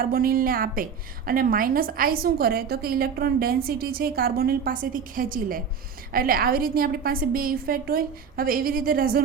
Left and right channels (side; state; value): left; quieter; 6.6 dB